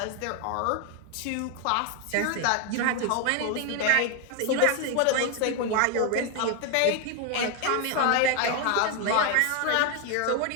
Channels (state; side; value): different; both; correlation 0.01